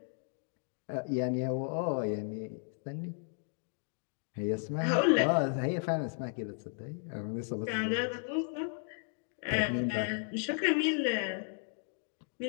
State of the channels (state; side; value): silent; right; 55 dB below the other